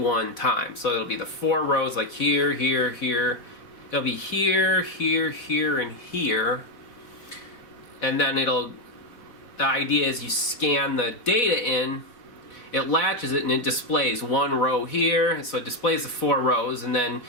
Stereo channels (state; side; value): late; right; 4.0 ms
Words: time. So it'll be the 4 rows like here, here, here. It'll be here, here, here, and here. And then the idea is you scan the data in, it latches it and it displays 1 row here, so it displays the 4 rows, and then